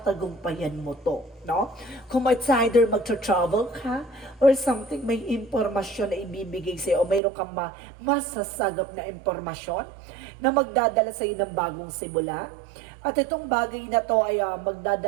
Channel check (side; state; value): left; drops out; at 7.2 s